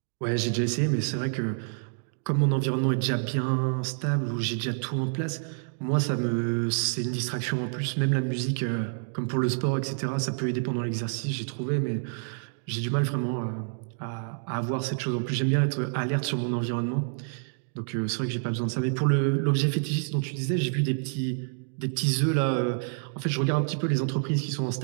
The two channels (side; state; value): left; silent; 59 dB below the other